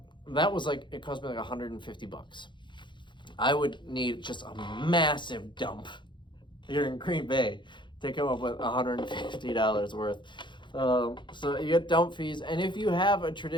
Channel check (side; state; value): right; late; 0.23 ms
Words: was like, it cost me like $150. I would need just a massive dump here in Green Bay to come up with $150 worth. So you get dump fees, and if you have a